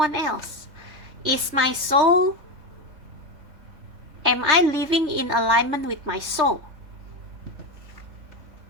else? Is my soul, am I living in alignment with my soul?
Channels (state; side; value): late; left; 3.3 ms